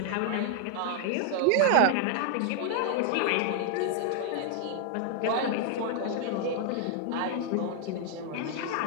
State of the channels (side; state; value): both; different; correlation 0.00